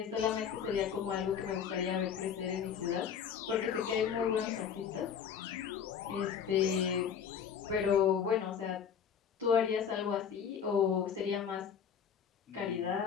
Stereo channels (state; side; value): quieter; right; 7.7 dB